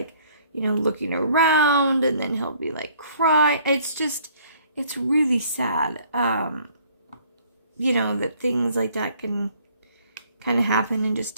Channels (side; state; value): both; inverted; correlation -0.60